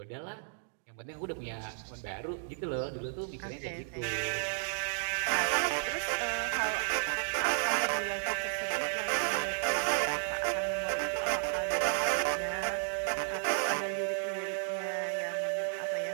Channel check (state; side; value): silent; left; digital silence